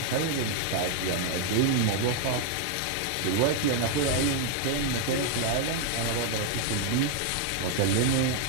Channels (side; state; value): both; different; correlation 0.00